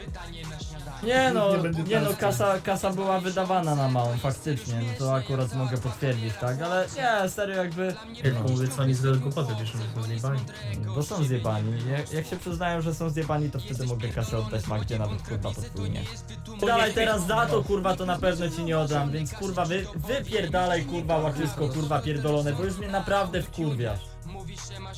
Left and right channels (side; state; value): both; identical; correlation 1.00